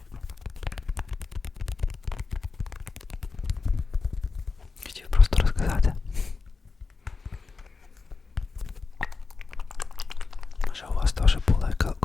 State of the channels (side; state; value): right; quieter; 4.4 dB